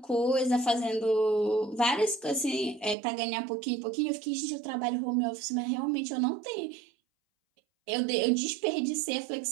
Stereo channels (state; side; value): drops out; left; at 3.0 s